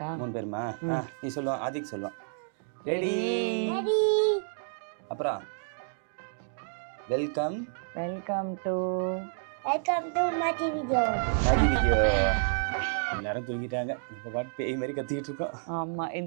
3 பேருமா? நீ சொல்லுவா, ஆதிக் சொல்லுவான். ரெடி. அப்புறம் வெல்கம் டு மாஜி வீடியோ. எல்லாரும் தூங்கிட்டாங்க. இப்போ பாட்டு பேய் மாதிரி கத்திக்கிட்டு இருக்கோம். ஆமா,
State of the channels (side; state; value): left; silent; digital silence